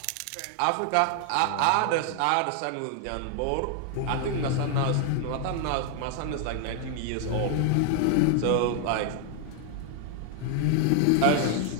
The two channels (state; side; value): different; both; correlation 0.00